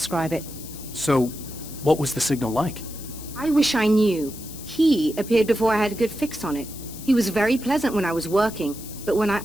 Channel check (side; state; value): left; noise; hiss, 14 dB below the sound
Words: it. So, what was the signal like? I wish I knew. He appeared before I had a good fix on it. He was very pleasant when I was working, but when I